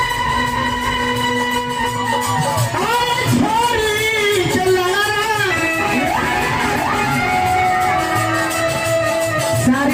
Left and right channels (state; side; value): identical; both; correlation 1.00